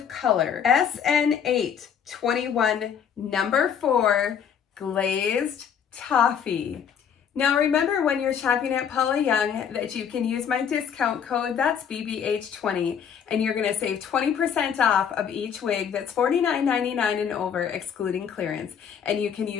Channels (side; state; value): right; quieter; 7.8 dB